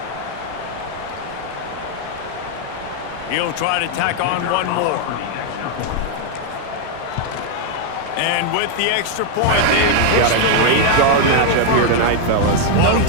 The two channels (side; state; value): both; different; correlation 0.00